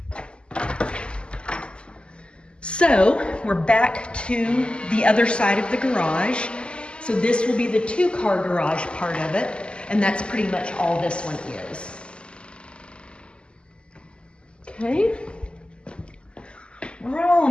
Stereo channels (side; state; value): right; late; 0.052 ms